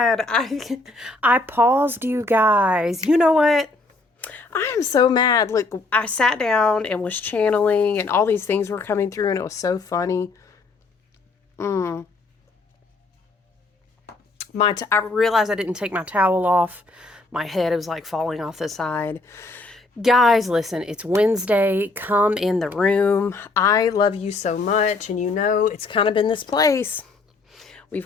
I paused you guys. You know what? I am so mad. Look, I sat down and was channeling and all these things were coming through and it was so funny. Mm. I realized I didn't take my towel off. My head was like falling off the side. Guys, listen, it's Wednesday. Come in the room. I love you so much and you know it's kind of been this place. We've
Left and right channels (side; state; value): right; quieter; 3.4 dB